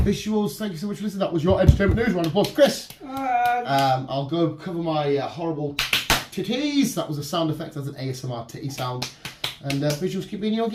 thank you so much for listening. That was your entertainment news. Round of applause, Chris. I'll go cover my horrible titties. That was a sound effect as an ASMR titty sound. And visuals, keep being you,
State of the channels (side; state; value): both; identical; correlation 1.00